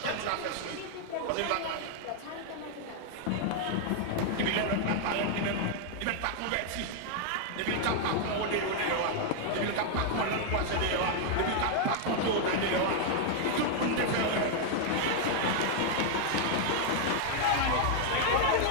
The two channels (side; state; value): both; different; correlation 0.00